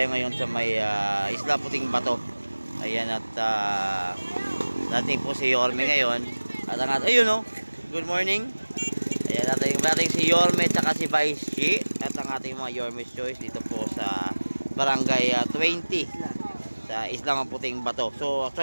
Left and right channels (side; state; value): both; inverted; correlation -1.00